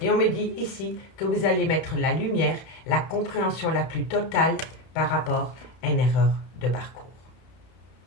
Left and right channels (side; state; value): right; late; 31 ms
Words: on me dit ici que vous allez mettre la lumière, la compréhension la plus totale par rapport à une erreur de parcours.